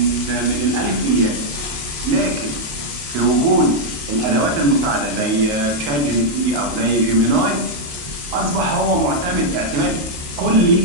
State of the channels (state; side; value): late; left; 28 ms